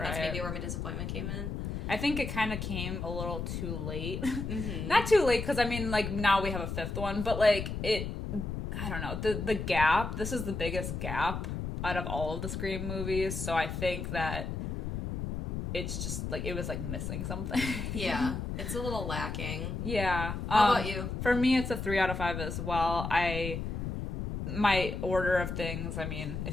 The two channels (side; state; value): left; noise; rumble, 4 dB below the sound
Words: that's maybe where my disappointment came in. I think it kind of came a little too late. Mm-hmm. Not too late, because I mean, like, now we have a 5th one, but like, I don't know, the gap, this is the biggest gap out of all of the Scream movies, so I think that it's just, like, it was, like, missing something. Yeah, it's a little lacking. Yeah. How about you? For me, it's a 3 out of 5 as well. My order of things, I mean,